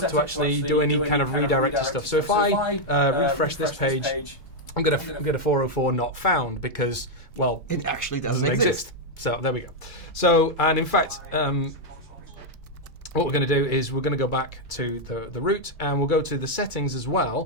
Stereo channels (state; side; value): late; right; 1.3 ms